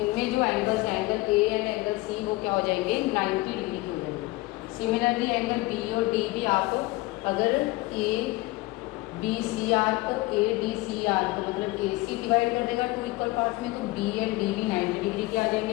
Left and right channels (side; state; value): right; quieter; 20.5 dB